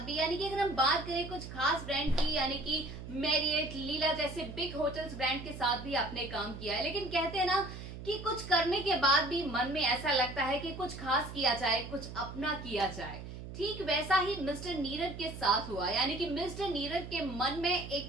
भी, यानी कि अगर हम बात करें कुछ खास ब्रांड की, यानी कि मैरियट, लीला जैसे बिग होटल्स ब्रांड के साथ भी आपने काम किया है, लेकिन कहते हैं ना कि कुछ करने के बाद भी मन में ऐसा लगता है कि कुछ खास किया जाए, कुछ अपना किया जाए। ठीक वैसा ही मिस्टर नीरव के साथ हुआ, यानी कि मिस्टर नीरव के मन में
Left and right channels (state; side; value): noise; right; hum, 11 dB below the sound